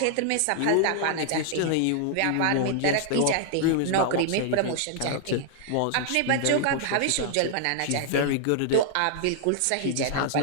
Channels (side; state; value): both; different; correlation -0.01